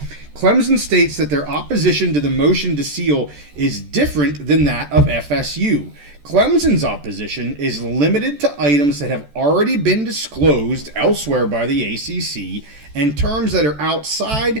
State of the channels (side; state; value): left; late; 14 ms